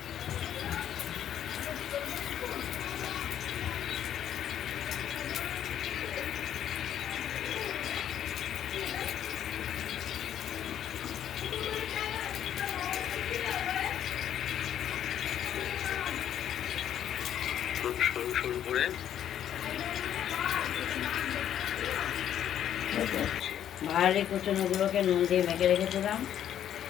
খুব সরু সরু করে ভাড়ালি কুচনোগুলোকে নুন দিয়ে মেখে রেখেছিলাম।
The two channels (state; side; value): quieter; right; 10.3 dB